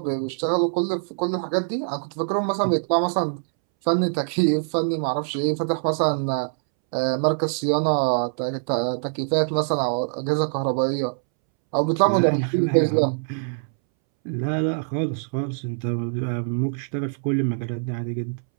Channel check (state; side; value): silent; left; 63 dB below the other